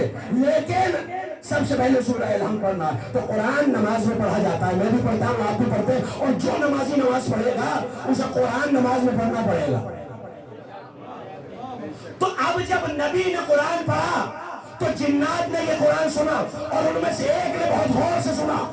لیکن سب سے پہلے سورہ الحمد پڑھنا ہے. تو قرآن نماز میں پڑھا جاتا ہے, میں بھی پڑھتا ہوں, آپ بھی پڑھتے ہیں, اور جو نمازی نماز پڑھے گا اسے قرآن نماز میں پڑھنا پڑے گا. تو اب جب نبی نے قرآن پڑھا تو جنات نے یہ قرآن سنا, اور ان میں سے ایک نے بہت غور سے سنا,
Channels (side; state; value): both; identical; correlation 1.00